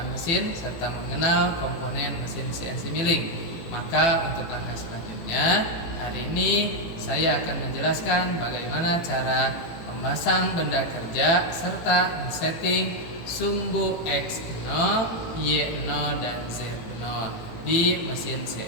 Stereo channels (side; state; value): right; late; 18 ms